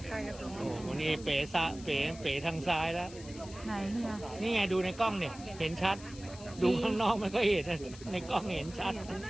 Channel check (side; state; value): left; noise; hiss, 18 dB below the sound